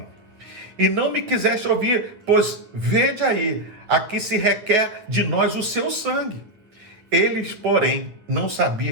e não me quiseste ouvir, pois vede aí, aqui se requer de nós o seu sangue. Eles, porém, não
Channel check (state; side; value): late; left; 9.4 ms